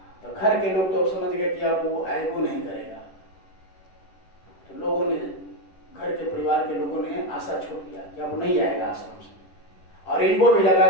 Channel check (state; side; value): late; right; 10 ms